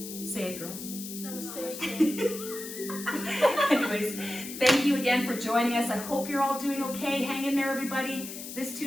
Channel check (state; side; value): noise; left; hiss, 10 dB below the sound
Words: Say it, girls. Namaste. Anyways, thank you again for joining us. I hope you're all doing okay. Hang in there, everybody. This